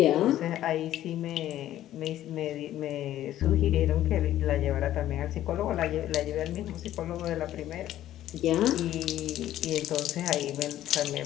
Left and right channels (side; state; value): right; quieter; 12.9 dB